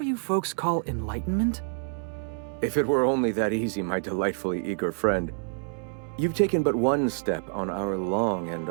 you folks call enlightenment? If it were only that easy, my delightfully eager friend. You've taken but one step on our long and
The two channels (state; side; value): silent; left; 60 dB below the other